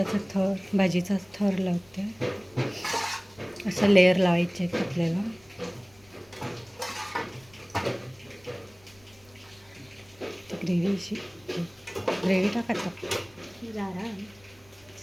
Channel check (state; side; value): noise; left; rumble, 29 dB below the sound